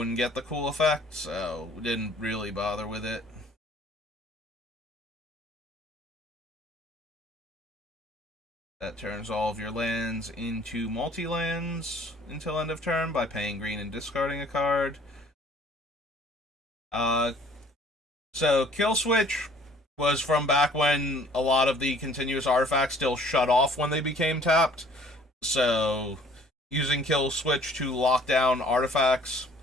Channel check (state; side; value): normal; both; correlation 0.55